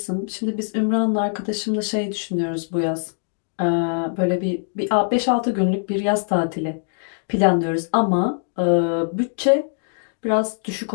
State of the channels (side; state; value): right; silent; digital silence